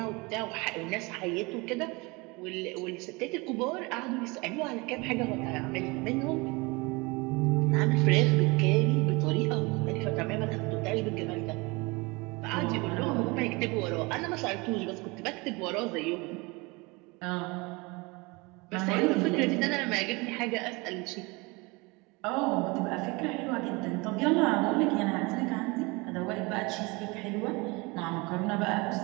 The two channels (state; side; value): quieter; left; 25.9 dB